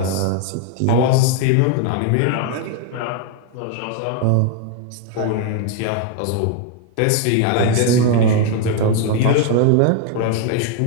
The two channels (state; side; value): different; both; correlation 0.00